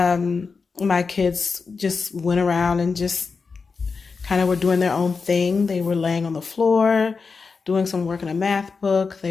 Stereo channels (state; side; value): quieter; right; 4.8 dB